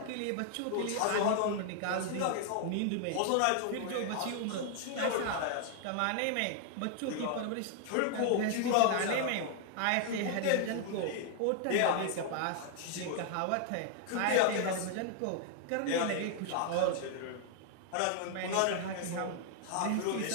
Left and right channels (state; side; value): different; both; correlation 0.00